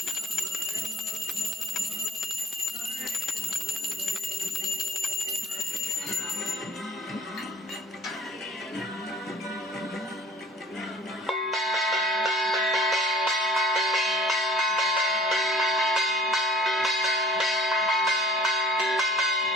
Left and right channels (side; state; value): both; normal; correlation 0.51